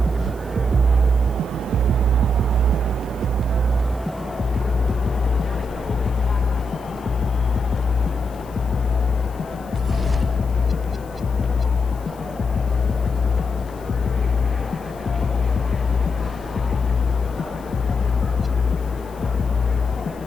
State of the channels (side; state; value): left; noise; hiss, 26 dB below the sound